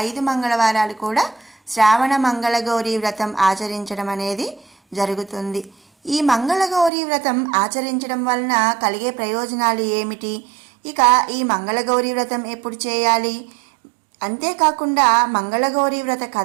మంగళవారాలు కూడా శ్రావణ మంగళగౌరీ వ్రతం ఆచరించడం అనేది జరుగుతుంది. ఈ మంగళగౌరీ వ్రతం ఆచరించడం వలన కలిగే ప్రయోజనాలు ఏమిటి, ఇక ఈ మంగళగౌరీ వ్రతం ఎప్పుడు చేయాలి, అంతేకాకుండా మంగళగౌరీ వ్రత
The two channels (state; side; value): drops out; left; at 6.9 s